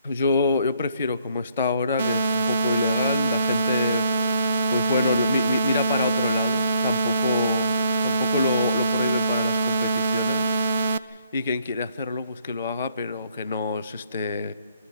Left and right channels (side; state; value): both; inverted; correlation -0.69